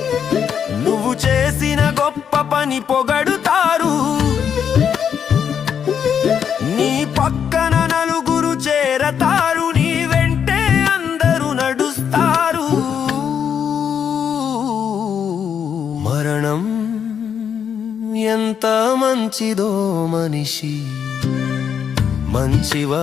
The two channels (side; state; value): right; quieter; 7.8 dB